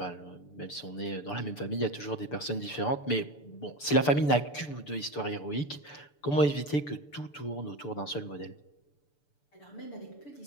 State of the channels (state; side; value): late; right; 6.9 ms